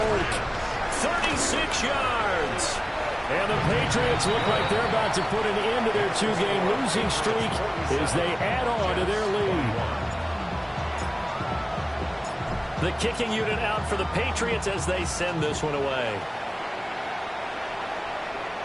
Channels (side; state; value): both; identical; correlation 1.00